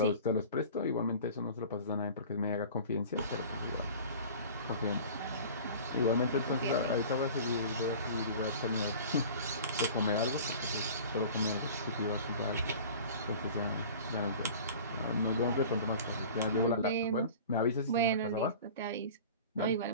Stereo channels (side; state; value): both; inverted; correlation -0.40